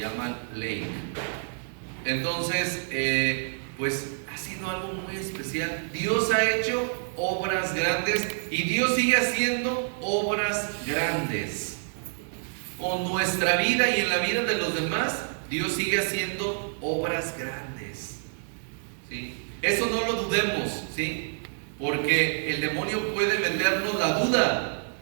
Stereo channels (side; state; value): left; silent; digital silence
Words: Lake. Entonces, pues ha sido algo muy especial. Dios ha hecho obras grandes y Dios sigue haciendo obras grandes. Con nuestra vida y en la vida de los demás, Dios sigue haciendo obras grandes. ¿Sí? Eso no lo dudemos, ¿sí? Porque el demonio puede vendernos la duda